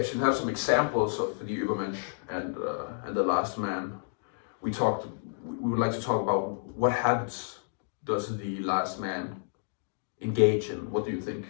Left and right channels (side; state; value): right; silent; digital silence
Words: have some examples of the Übermensch and the last man. We would like to talk about what habits does the last man engage in. What do you think